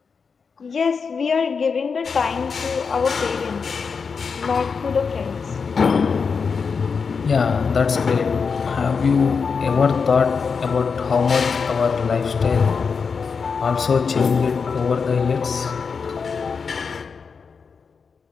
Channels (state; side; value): quieter; right; 5.5 dB